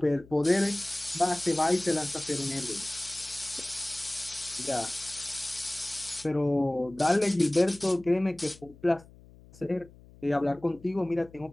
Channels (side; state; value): left; noise; hum, 23 dB below the sound